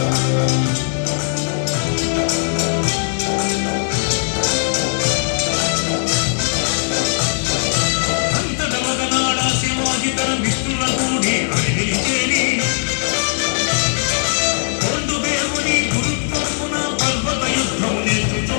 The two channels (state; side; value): silent; right; 67 dB below the other